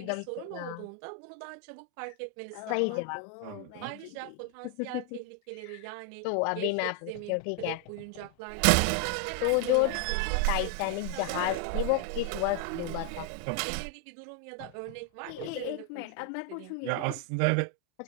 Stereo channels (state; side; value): different; both; correlation 0.00